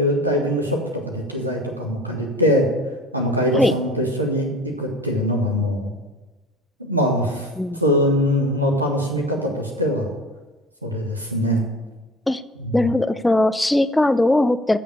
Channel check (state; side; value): normal; both; correlation 0.44